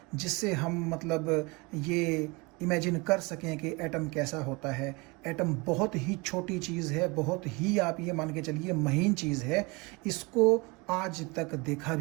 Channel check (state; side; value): quieter; left; 26.8 dB